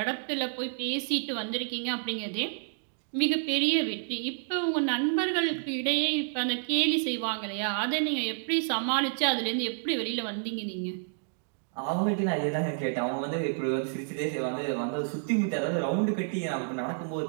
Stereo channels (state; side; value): silent; left; digital silence